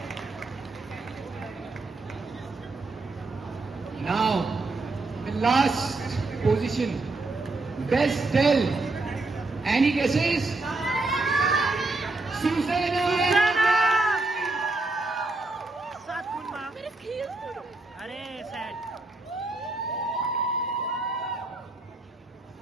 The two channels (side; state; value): left; quieter; 3.2 dB